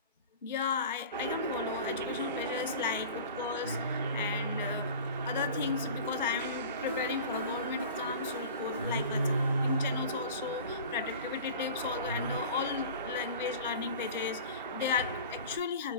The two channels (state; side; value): inverted; both; correlation -0.38